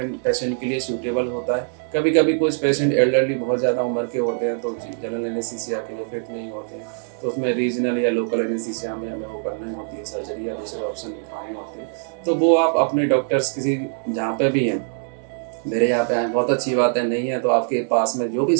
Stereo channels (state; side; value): silent; left; 61 dB below the other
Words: पेशेंट के लिए सूटेबल होता है। कभी कभी कुछ पेशेंट एल्डरली बहुत ज़्यादा उम्र के होते हैं तो जनरल एनेस्थीसिया के लिए फिट नहीं होते हैं, तो उसमें रीजनल या लोकल एनेस्थीसिया में हमें वो करनी होती है सर्जरी, या दूसरे ऑप्शन दिखाने होते हैं। तो वो आप अपने डॉक्टर्स किसी जहाँ पे भी हैं, मेरे यहाँ पे आए, बहुत अच्छी बात है, नहीं है तो आपके पास में जो भी